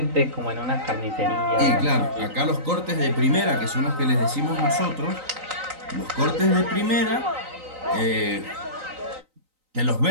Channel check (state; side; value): late; left; 3.9 ms